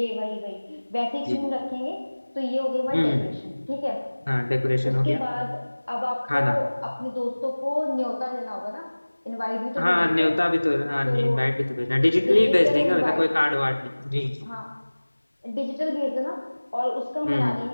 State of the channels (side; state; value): both; inverted; correlation -1.00